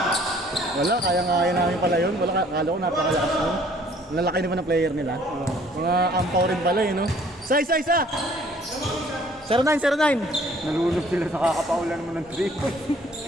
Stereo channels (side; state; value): both; normal; correlation 0.57